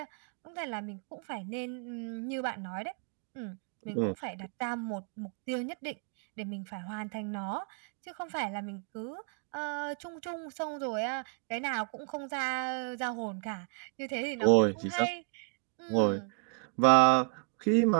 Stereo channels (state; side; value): quieter; left; 39.3 dB